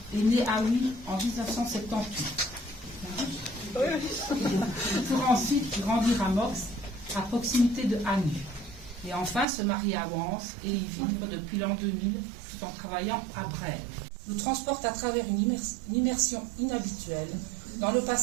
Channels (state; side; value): drops out; left; at 9.5 s